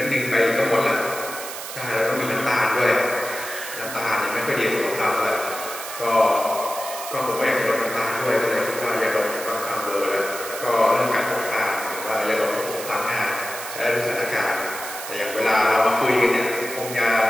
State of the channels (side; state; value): right; noise; hiss, 9 dB below the sound